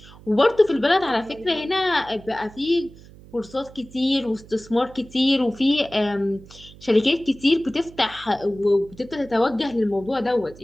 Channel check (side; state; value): right; noise; hum, 21 dB below the sound